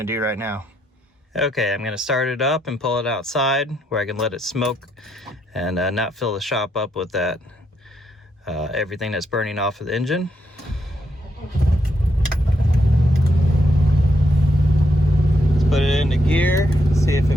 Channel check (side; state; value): both; normal; correlation 0.78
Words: to do right now. Okay, I'm going to start it up and pull it outside where I can let it smoke and not fill the shop up with that everything that's burning off of the engine. Let's put it into gear, see if